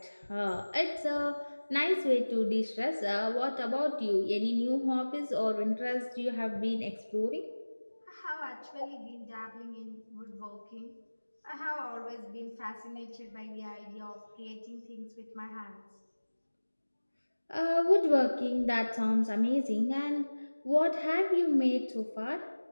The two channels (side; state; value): both; inverted; correlation -1.00